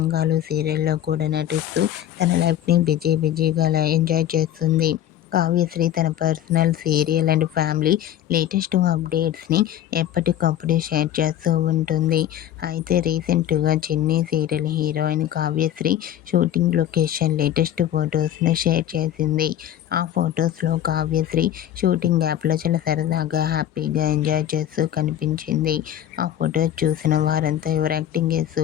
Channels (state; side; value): quieter; right; 11.4 dB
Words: సీరియల్లో కూడా నటిస్తూ తన లైఫ్ని బిజీగా ఎంజాయ్ చేస్తుంది. కావ్యశ్రీ తన personal, serial and family latest అప్డేట్స్ని ఎప్పటికప్పుడు షేర్ చేస్తూ ఉంటుంది. అయితే రీసెంట్గా Chinni serial heroine Kavyasri shooting location latest ఫొటోస్ను షేర్ చేసింది. ఆ ఫొటోస్లో కావ్యశ్రీ షూటింగ్ యాప్లో చాలా సరదాగా, హ్యాపీగా ఎంజాయ్ చేస్తూ కనిపించింది. ఆ ఫొటోస్ చూసిన వారంతా your acting is